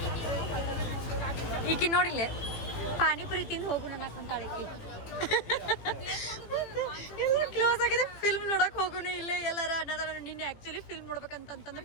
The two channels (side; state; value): right; late; 18 ms